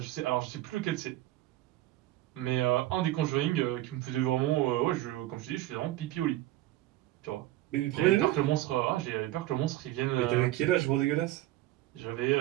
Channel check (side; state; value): left; quieter; 15.9 dB